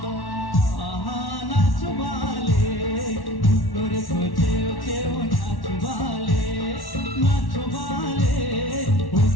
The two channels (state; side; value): late; right; 1.1 ms